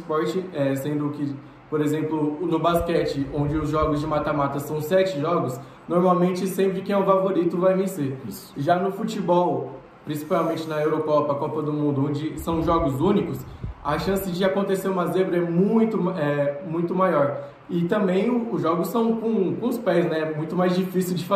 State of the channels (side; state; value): both; identical; correlation 1.00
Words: sendo que, por exemplo, no basquete, onde os jogos de mata-mata são 7 jogos, normalmente sempre quem é o favorito vai vencer. Isso. Já no futebol, principalmente na Eurocopa, Copa do Mundo, onde são jogos únicos, a chance de acontecer uma zebra é muito maior. E também os jogos são com os pés, né? É muito mais difícil de